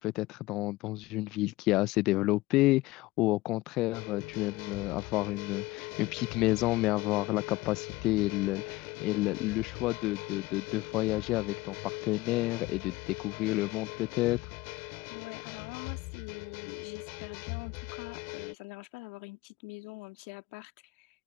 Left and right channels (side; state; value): right; quieter; 19.4 dB